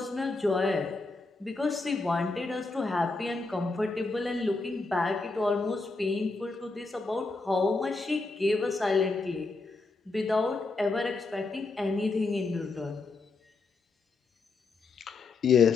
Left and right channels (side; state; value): right; quieter; 3.7 dB